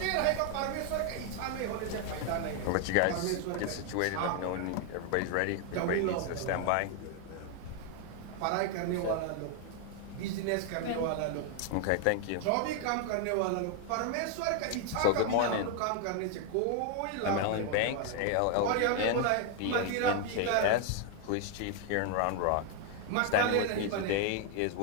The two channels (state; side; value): different; both; correlation 0.00